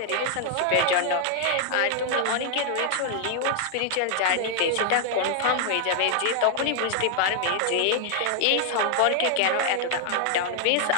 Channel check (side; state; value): both; different; correlation 0.00